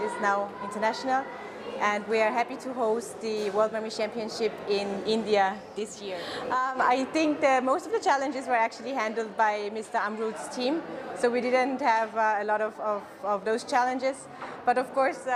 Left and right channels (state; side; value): identical; both; correlation 1.00